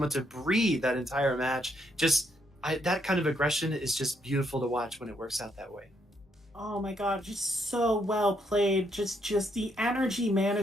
to breathe that entire match. That kind of aggression is just beautiful to watch when it works out that way. Oh my god, just so well played. Just the energy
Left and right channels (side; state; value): both; normal; correlation 0.75